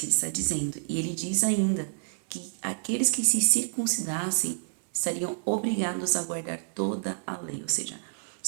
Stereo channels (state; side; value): silent; left; digital silence